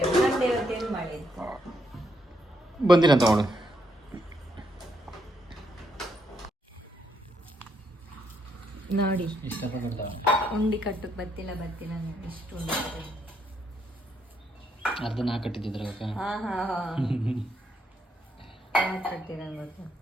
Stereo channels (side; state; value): both; normal; correlation 0.76